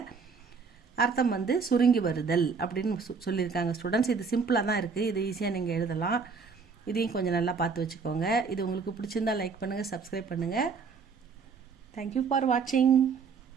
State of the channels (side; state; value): left; quieter; 5.2 dB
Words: அர்த்தம் வந்து சுருங்கி வருதல் அப்படின்னு சொல்லியிருக்காங்க ஸ்டூடெண்ட்ஸ். இது சிம்பிளாக தான் இருக்குது, இது ஈஸியாக நீங்கள் எழுதலாம். இதையும் கொஞ்சம் நல்லா பார்த்து வச்சுக்கோங்க. இது உங்களுக்கு பிடிச்சிருந்தால் லைக் பண்ணுங்கள், சப்ஸ்கிரைப் பண்ணுங்கள். தேங்க்யூ ஃபார் வாட்சிங்.